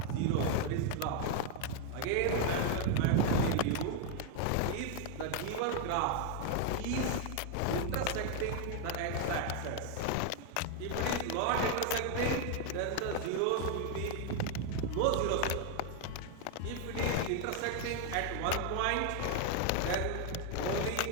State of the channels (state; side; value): different; both; correlation 0.01